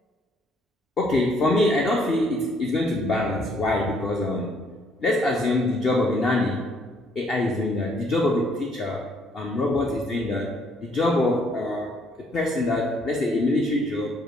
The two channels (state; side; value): normal; both; correlation 0.66